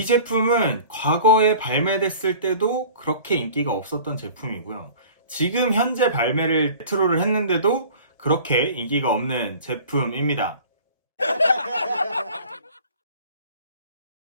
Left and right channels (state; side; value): inverted; both; correlation -0.44